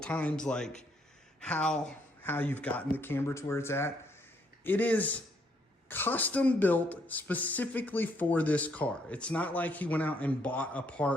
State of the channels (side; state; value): both; normal; correlation 0.70